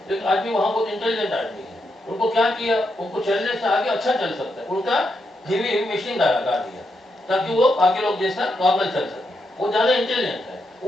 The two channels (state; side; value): normal; both; correlation 0.82